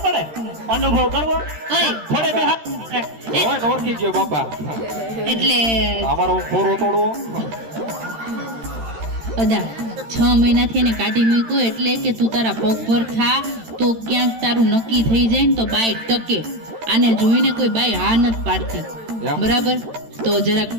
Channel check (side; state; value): left; late; 13 ms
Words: પડે અનુભવ કરવો ઓય થોડે બે હાથ હોય ને ઓળખી ગયો બાપા. એટલે અમારો ખોરો તોડવો. અદા 6 મહિનાથી એને કાઢી મૂક્યો એટલે કે તું તારા પગ પર થા તો ક્યાંક તારું નક્કી થઈ જાય ને તો બાઈ ટકે. આને જોઈને કોઈ બાઈ હા નથી પાડતી. એમ? બરાબર. તો જરાક